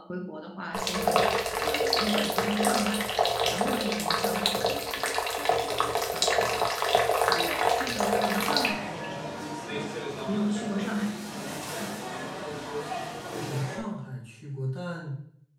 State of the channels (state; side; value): identical; both; correlation 1.00